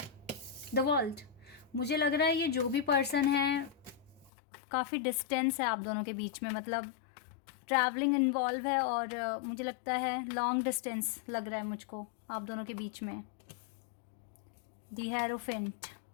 the world. मुझे लग रहा है ये जो भी पर्सन है, काफ़ी डिस्टेंस है आप दोनों के बीच में, मतलब ट्रैवलिंग इन्वॉल्व है और मुझे लगता है लॉन्ग डिस्टेंस लग रहा है मुझको आप दोनों के बीच में। The hierophant,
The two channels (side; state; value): right; drops out; at 4.3 s